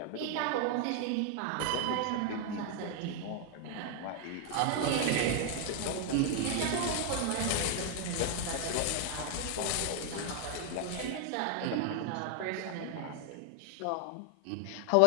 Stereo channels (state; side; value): different; both; correlation 0.00